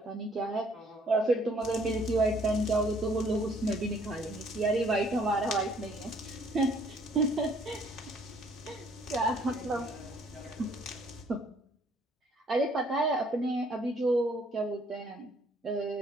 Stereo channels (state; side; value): normal; both; correlation 0.62